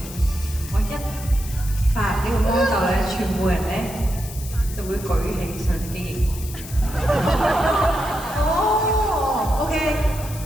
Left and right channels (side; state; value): left; noise; hiss, 14 dB below the sound